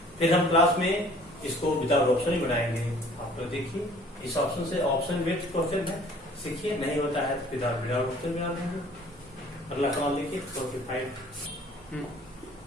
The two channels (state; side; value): normal; both; correlation 0.53